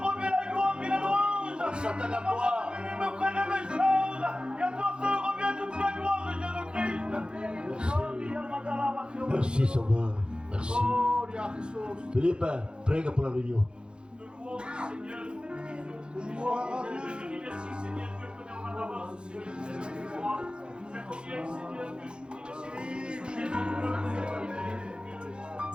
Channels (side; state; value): left; late; 0.051 ms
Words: revient la gloire et la louange. Satan à toi. Il me prenne mes choses. Et à toi seul revient toute la gloire de Jésus-Christ. Merci Sauveur. Merci. Philippe, prie pour la réunion. Nous louons Seigneur. Je dis merci Seigneur que je connais en avance Seigneur. Mais combien Seigneur que je dis